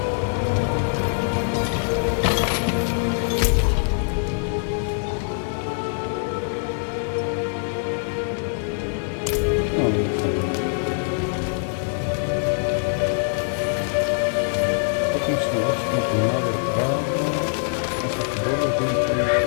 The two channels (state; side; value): silent; right; digital silence